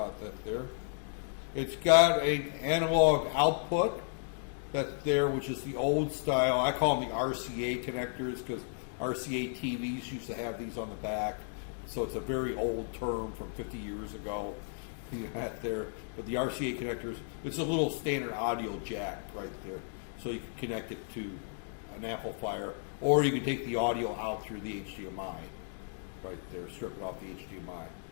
that there. It's got an analog output that there, which is the old style. I call them the RCA connectors because RCA TVs used to have these on the back. So it's a very old term from 50 years ago. There, but the RCA connectors, it's a little standard audio jack right there. So you can connect it to an amplifier, or you can take the audio out through the HDMI right there, strip it off the HDMI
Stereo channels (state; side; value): silent; right; digital silence